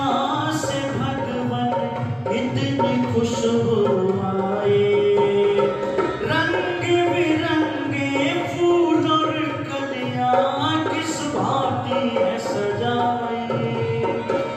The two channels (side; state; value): both; identical; correlation 1.00